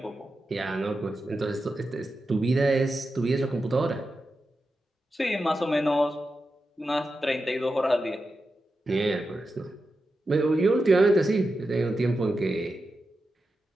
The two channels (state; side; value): normal; both; correlation 0.90